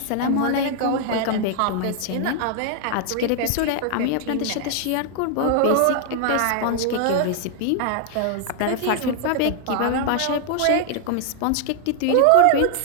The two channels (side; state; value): both; different; correlation 0.00